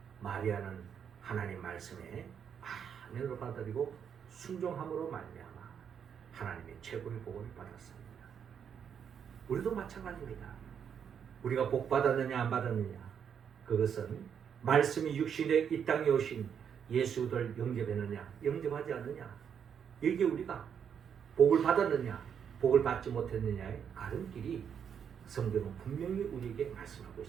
마리아는 하나님 말씀에 아멘으로 받아들이고 순종함으로 말미암아 하나님의 최고의 복을 받았습니다. 우리도 마찬가지입니다. 우리가 복 받았느냐 안 받았느냐, 그것은 말씀이 육신에 이 땅에 오신 예수를 영접했느냐 영접하지 않느냐, 이게 우리가 복을 받았느냐 복을 받지 못했느냐의 가름길이 성경은 분명히 우리에게 말씀하고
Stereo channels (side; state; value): left; quieter; 7.8 dB